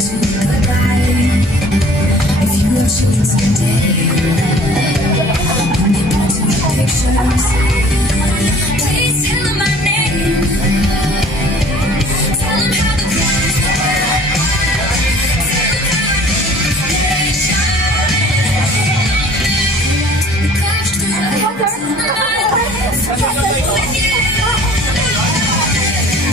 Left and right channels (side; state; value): both; normal; correlation 0.50